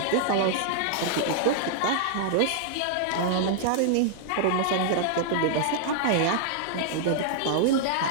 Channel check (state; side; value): different; both; correlation -0.01